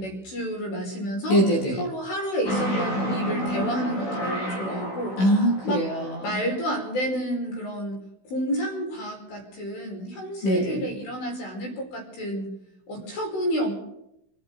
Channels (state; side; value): late; right; 16 ms